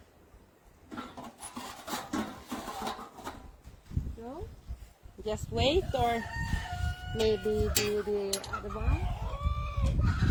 So, just wait, or maybe do the other one.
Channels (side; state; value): both; identical; correlation 1.00